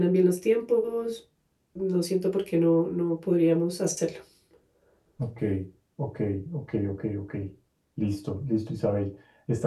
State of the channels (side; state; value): both; identical; correlation 1.00